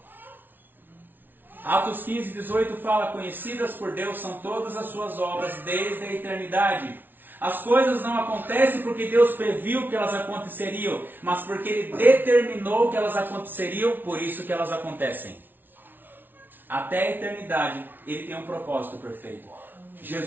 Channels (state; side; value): late; left; 0.093 ms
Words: Atos 15, 18 fala: conhecidas por Deus são todas as suas obras desde a eternidade. As coisas não acontecem porque Deus previu que elas aconteceriam, mas porque Ele determinou que elas aconteceriam, por isso que elas acontecem. Até a eternidade, Ele tem um propósito perfeito.